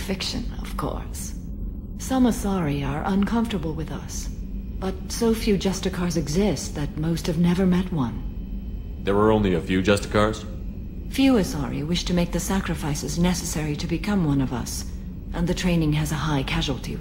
of course. Some Asari are uncomfortable with us, but so few Justicars exist that most have never met one. There were only a few Justicars? Few Asari wish to make the sacrifices necessary to become one of us, and the training has a high casualty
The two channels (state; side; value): identical; both; correlation 1.00